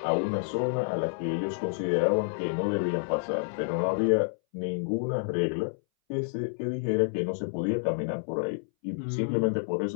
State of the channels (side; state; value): right; silent; 59 dB below the other